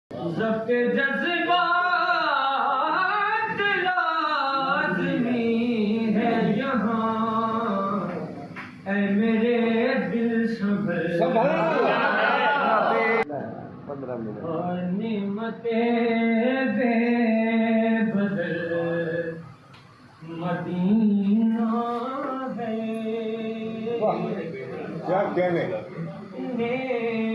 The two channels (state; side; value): identical; both; correlation 1.00